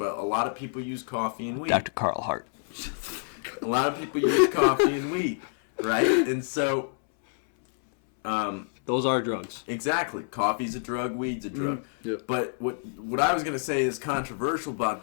a lot of people use coffee and weed. Dr. Carl Hart. A lot of people use coffee and weed, right? And so, Those are drugs. exactly, coffee's a drug, weed's a drug. Yep. But what I was going to say is controversial about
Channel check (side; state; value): right; silent; 60 dB below the other